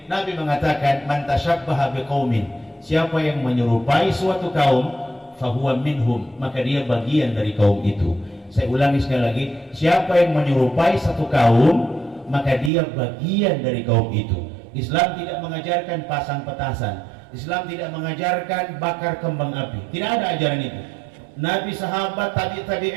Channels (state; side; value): drops out; left; at 12.7 s